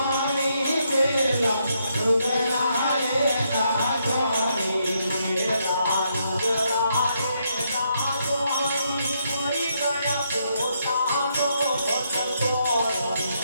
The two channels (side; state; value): both; inverted; correlation -0.77